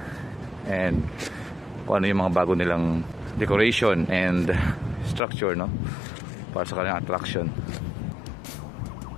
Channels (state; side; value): drops out; right; at 5.2 s